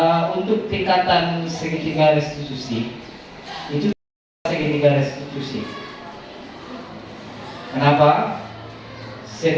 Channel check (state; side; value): identical; both; correlation 1.00